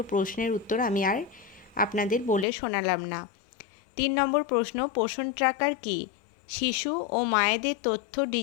প্রশ্নের উত্তর আমি আর আপনাদের বলে শোনালাম না। 3 নম্বর প্রশ্ন, পোষণ ট্র্যাকার কি? শিশু ও মায়েদের তথ্য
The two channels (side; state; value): right; drops out; at 2.5 s